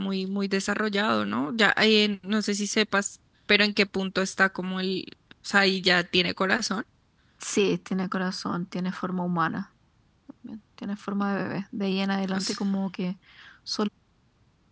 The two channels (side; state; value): both; identical; correlation 1.00